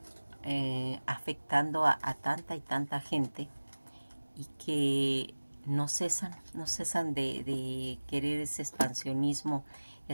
afectando a tanta y tanta gente y que no cesan de querer ese expansionismo,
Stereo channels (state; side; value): inverted; both; correlation -1.00